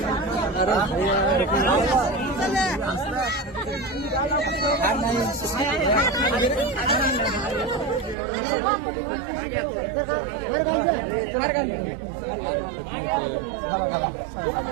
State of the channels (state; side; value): drops out; left; at 8.2 s